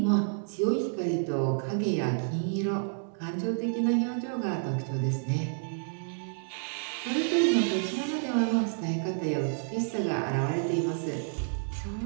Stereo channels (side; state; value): left; silent; digital silence